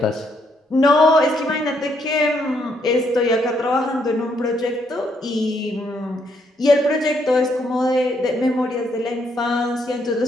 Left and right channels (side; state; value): both; normal; correlation 0.73